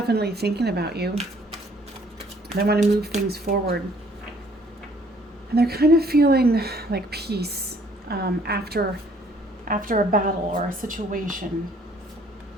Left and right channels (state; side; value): normal; both; correlation 0.61